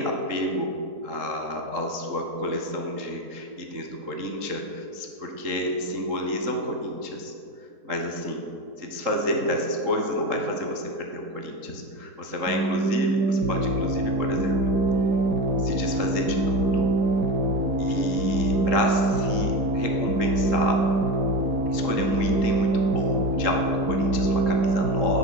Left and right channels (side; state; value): left; late; 3.8 ms